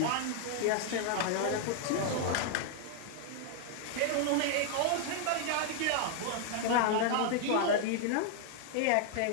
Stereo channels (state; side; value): different; both; correlation 0.00